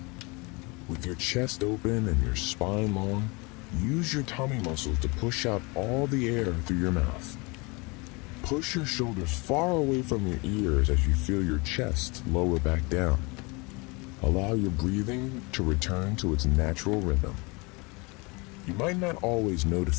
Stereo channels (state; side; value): quieter; right; 27.6 dB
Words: With your chest open and your spine long, use your tummy muscles to push out all the air through your mouth. Push your shoulders far away from your ears as you feel your chest lower back down. Allow your breathing to return to its natural rhythm. You might not always